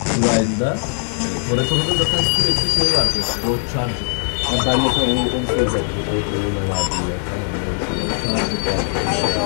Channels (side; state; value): right; silent; 66 dB below the other